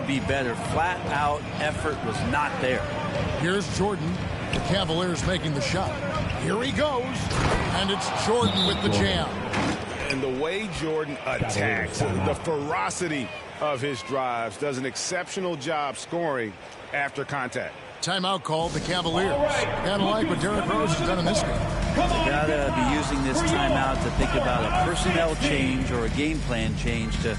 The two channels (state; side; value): identical; both; correlation 1.00